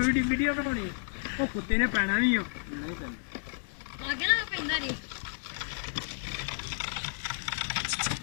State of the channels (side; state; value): right; silent; digital silence